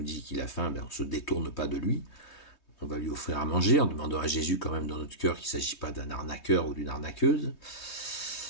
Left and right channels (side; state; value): right; late; 3.2 ms